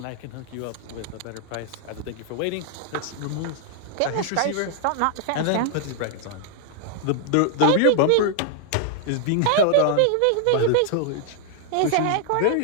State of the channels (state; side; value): different; both; correlation 0.00